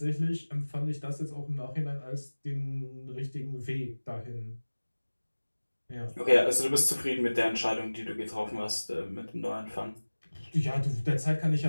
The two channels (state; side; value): inverted; both; correlation -1.00